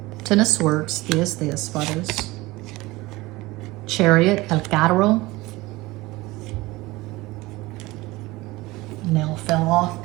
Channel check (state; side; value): quieter; left; 20.6 dB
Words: 10 of Swords, Diez de Espadas. Chariot, El Carro. Nail fell off